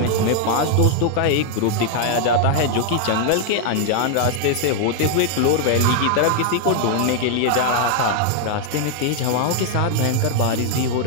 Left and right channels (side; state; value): both; different; correlation 0.00